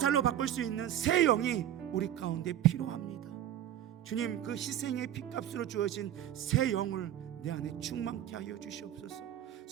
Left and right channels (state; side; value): quieter; left; 11.5 dB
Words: 바꿀 수 있는 새 영이 우리 가운데 필요합니다. 주님, 그 희생의 핏값으로 주어진 새 영을 내 안에 충만케 하여 주시옵소서.